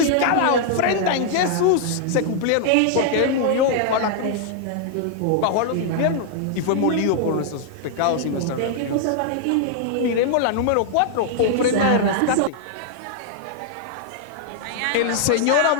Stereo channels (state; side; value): different; both; correlation -0.01